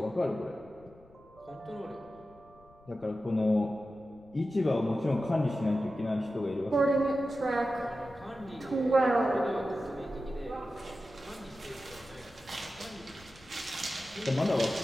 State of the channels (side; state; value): left; noise; rumble, 26 dB below the sound